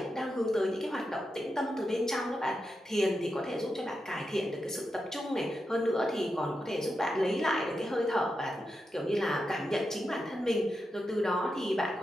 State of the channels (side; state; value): both; normal; correlation 0.88